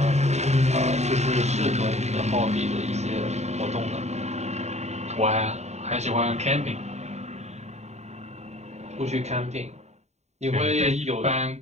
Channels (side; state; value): left; late; 0.32 ms